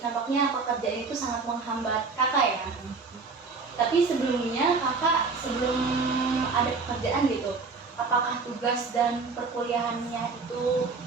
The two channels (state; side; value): quieter; left; 4.5 dB